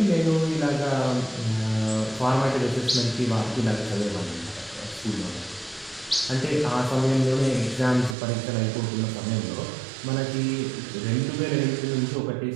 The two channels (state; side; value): drops out; left; at 8.2 s